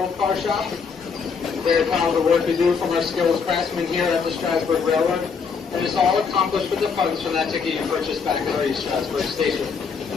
car shop. Very proud of the work we do from our skilled craftsmen here at the Strasburg Railroad. And it's all accomplished with the funds from that ticket you purchased back at our East Strasburg station.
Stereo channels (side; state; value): right; quieter; 5.7 dB